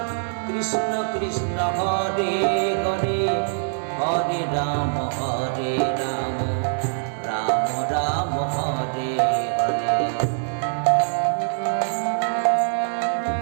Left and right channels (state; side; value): silent; left; 63 dB below the other